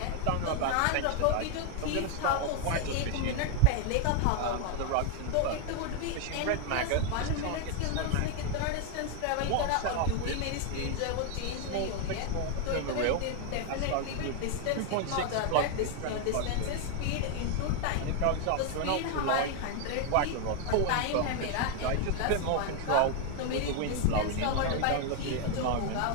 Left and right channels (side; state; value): both; different; correlation 0.01